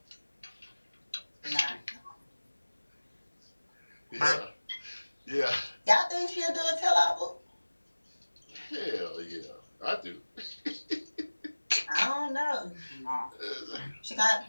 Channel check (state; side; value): inverted; both; correlation -1.00